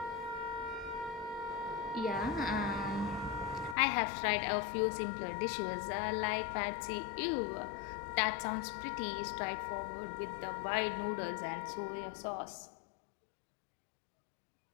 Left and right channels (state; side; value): drops out; right; at 3.8 s